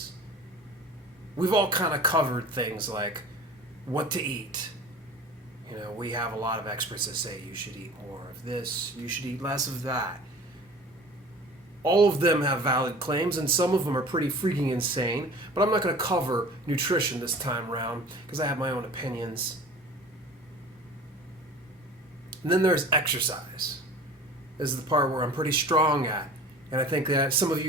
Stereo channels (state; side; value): normal; both; correlation 0.42